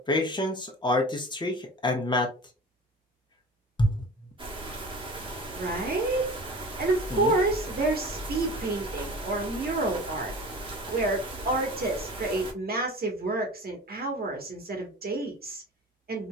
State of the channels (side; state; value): both; normal; correlation 0.38